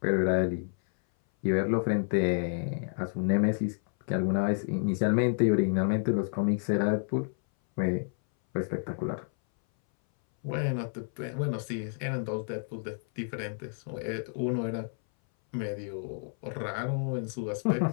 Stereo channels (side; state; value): right; silent; 58 dB below the other